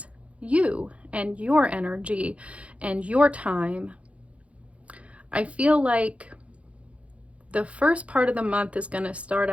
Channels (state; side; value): late; left; 0.063 ms